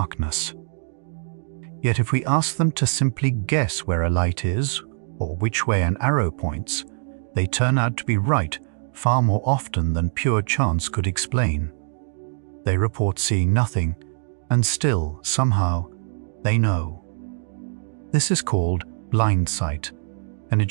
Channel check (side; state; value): left; silent; digital silence